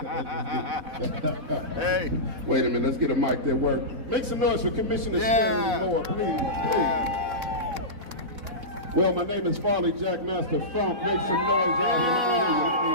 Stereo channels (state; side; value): late; left; 4.1 ms